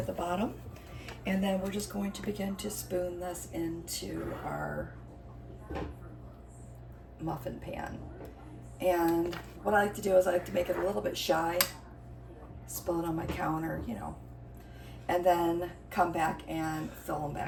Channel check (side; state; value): both; identical; correlation 1.00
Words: the bottom. And then we're just going to begin to spoon this into our muffin pan. And what I like to do is I like to make it a little bit shy, spill it on my counter, you know, and then come back and fill them